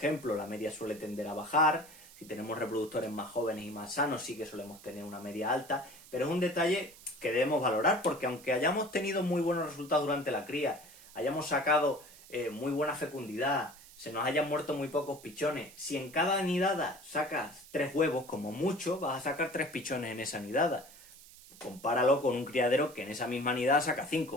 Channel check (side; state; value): right; noise; hiss, 20 dB below the sound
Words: la media suele tender a bajar. Si tenemos reproductores más jóvenes y más sanos, sí que solemos tener una media alta, pero es un detalle que debemos valorar, porque aunque hayamos tenido muy buenos resultados durante la cría, hayamos sacado muy buena fecundidad, se nos hayan muerto muy pocos pichones, si en cada nidada sacas 3 huevos, como mucho, vas a sacar 3 pichones en esa nidada. Compáralo con un criadero que en esa misma nidada saca